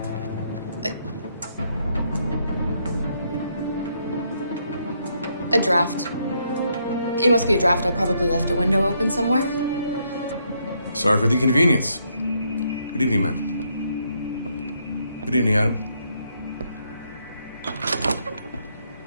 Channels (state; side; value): inverted; both; correlation -0.75